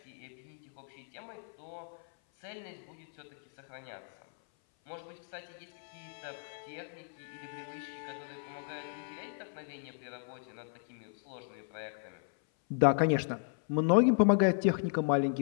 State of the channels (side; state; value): right; silent; 54 dB below the other